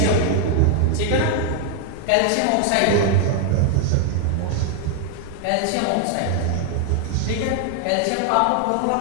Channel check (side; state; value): both; different; correlation 0.00